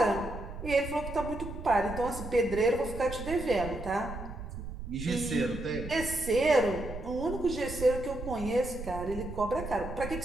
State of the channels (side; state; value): right; noise; rumble, 9 dB below the sound